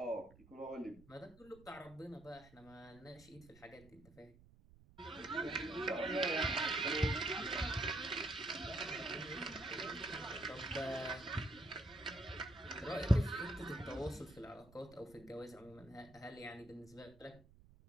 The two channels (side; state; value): right; noise; rumble, 23 dB below the sound